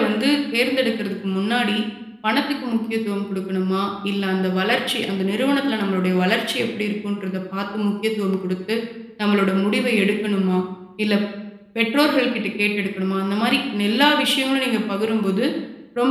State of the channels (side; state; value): both; identical; correlation 1.00